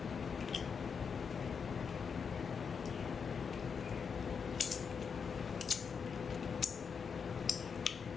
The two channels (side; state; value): right; quieter; 6.1 dB